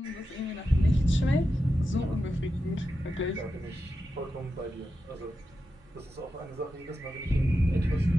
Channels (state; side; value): normal; both; correlation 0.89